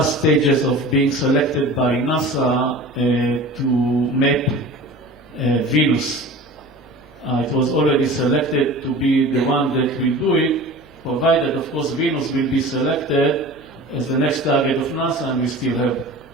stages of being selected by NASA to map Venus. It was already selected to be the one that will do it, provided, of course, Venus will be selected as the next target of NASA, and we still have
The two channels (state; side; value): noise; right; hum, 27 dB below the sound